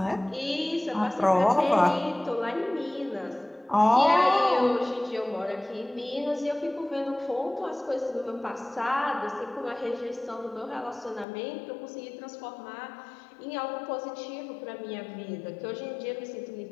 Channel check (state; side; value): drops out; right; at 11.2 s